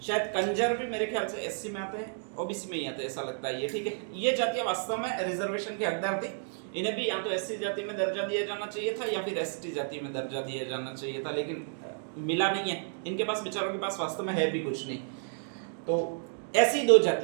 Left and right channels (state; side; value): silent; left; digital silence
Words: शायद कंजर भी मेरे ख्याल से एससी में आते हैं, ओबीसी में ही आते हैं, ऐसा लगता है ये, ठीक है। ये जातियां वास्तव में रिजर्वेशन के हकदार थी। इन्हें भी या तो एससी जाति में दर्जा दिया जाना चाहिए था या फिर एसटी जाति में दर्जा दिया जाना चाहिए था, लेकिन मिला नहीं है। इनके पास, बेचारों के पास वास्तव में है भी कुछ नहीं। तो ऐसी दो